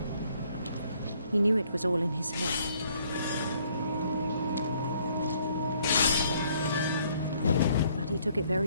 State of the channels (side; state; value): both; inverted; correlation -0.65